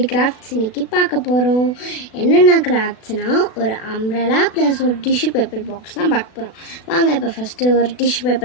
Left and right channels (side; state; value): right; late; 36 ms